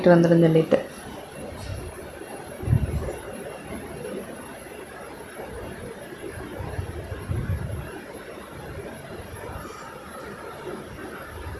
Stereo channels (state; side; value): identical; both; correlation 1.00